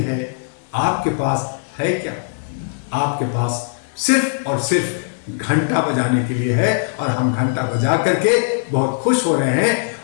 है। आपके पास है क्या? आपके पास सिर्फ और सिर्फ घंटा बजाने के लिए है, और हम घंटा बजा करके बहुत खुश हो रहे हैं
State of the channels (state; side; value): silent; right; digital silence